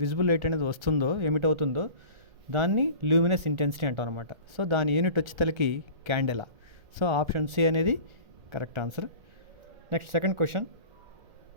విజిబుల్ లైట్ అనేది వస్తుందో, ఎమిట్ అవుతుందో దాన్ని ల్యూమినస్ ఇంటెన్సిటీ అంటాం అనమాట. సో దాని యూనిట్ వచ్చేసరికి క్యాండెలా. సో ఆప్షన్ సి అనేది correct answer. Next second question,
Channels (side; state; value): left; late; 1.3 ms